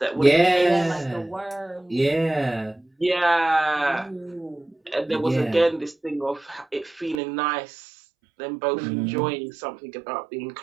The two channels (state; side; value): drops out; left; at 7.2 s